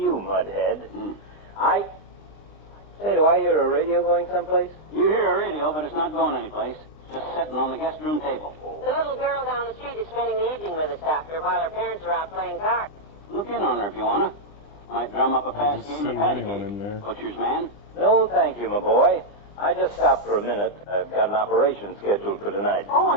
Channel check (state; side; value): late; right; 20 ms